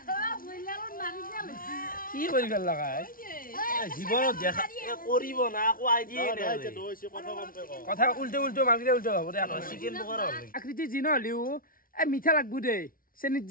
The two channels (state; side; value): late; right; 0.42 ms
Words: কি করি গেল লাগাই জীৱনত দেখা কৰিব না আকো আইডিয়া কথা উল্টে মালকে উল্টে হ'ব দে চিকেন পকৰা আকৃতি যি নহলিও এই মিঠা লাগবো দে চেনিত